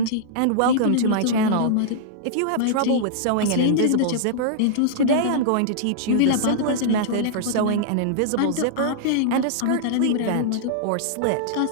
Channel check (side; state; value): both; different; correlation -0.01